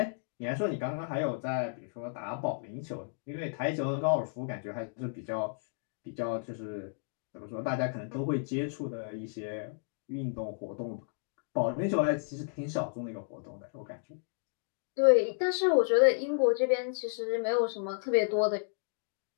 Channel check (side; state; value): right; silent; digital silence